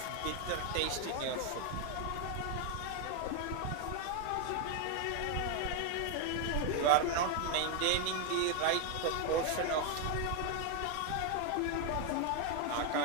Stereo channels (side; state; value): both; different; correlation 0.01